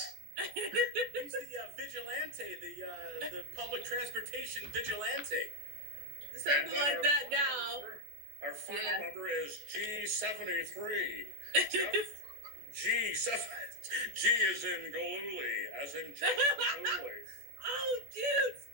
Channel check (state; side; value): late; left; 14 ms